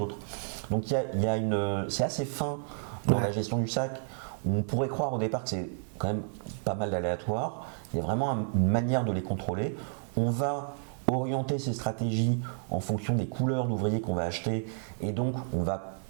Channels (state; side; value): silent; left; 57 dB below the other